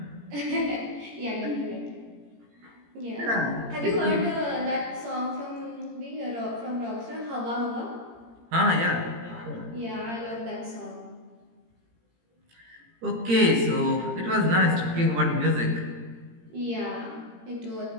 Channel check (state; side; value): late; left; 17 ms